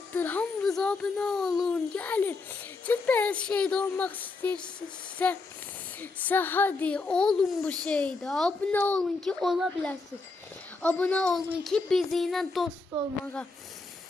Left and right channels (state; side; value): quieter; right; 3.8 dB